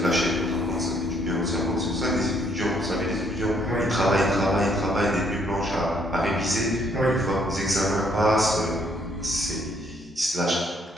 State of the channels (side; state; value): both; normal; correlation 0.68